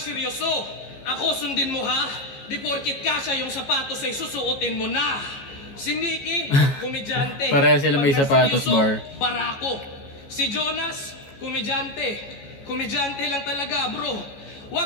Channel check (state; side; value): late; right; 14 ms